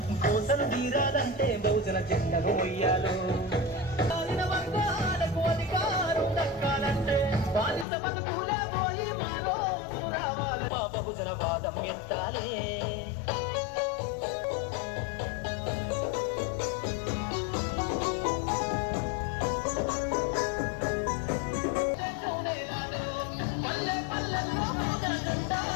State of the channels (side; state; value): right; drops out; at 7.9 s